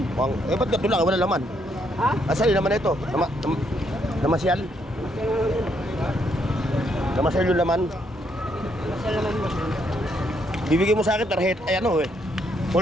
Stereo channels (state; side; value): normal; both; correlation 0.73